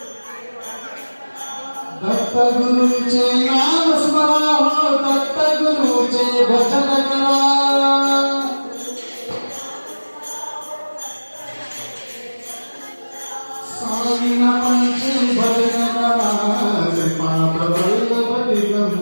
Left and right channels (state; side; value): inverted; both; correlation -1.00